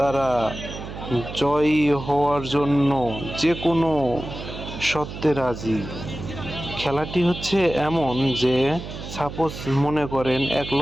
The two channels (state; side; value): noise; right; hum, 10 dB below the sound